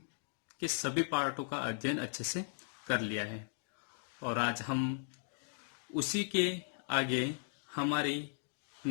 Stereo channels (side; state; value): right; silent; digital silence